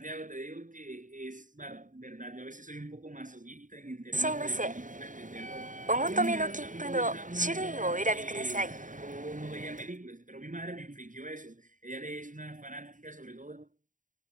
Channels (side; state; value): left; late; 0.38 ms